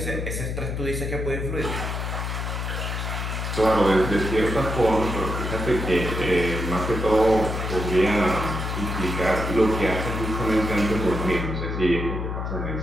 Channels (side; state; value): left; noise; hum, 3 dB below the sound